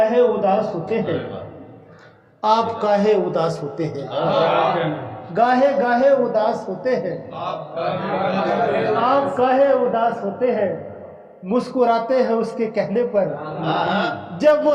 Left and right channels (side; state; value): both; identical; correlation 1.00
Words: उदास होते हैं, आप काहे उदास होते हैं। गाहे गाहे उदास होते हैं, आप काहे उदास होते हैं। मुस्कुराते हैं उसके कहने पर, जब